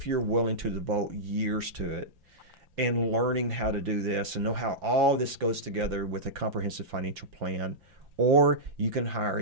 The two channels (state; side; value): late; left; 5.8 ms